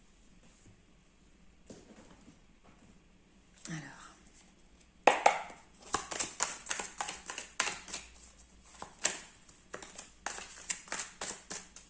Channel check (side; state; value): both; identical; correlation 1.00